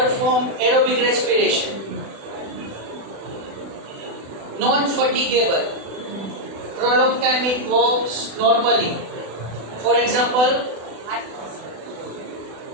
aerobic respiration, non-fatigable. Prolonged time it walks normally. For example,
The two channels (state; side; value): late; left; 36 ms